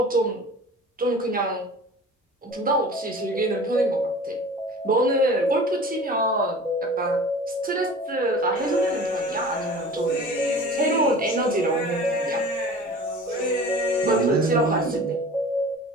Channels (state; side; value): normal; both; correlation 0.41